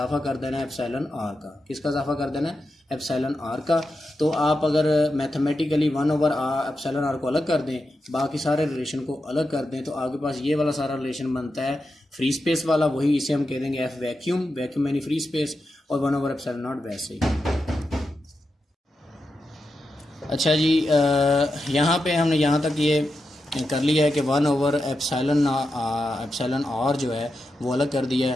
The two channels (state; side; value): normal; both; correlation 0.88